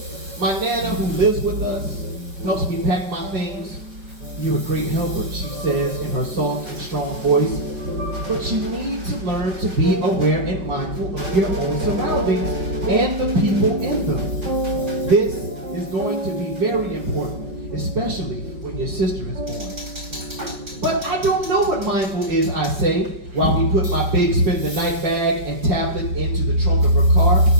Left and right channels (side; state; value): left; late; 5.2 ms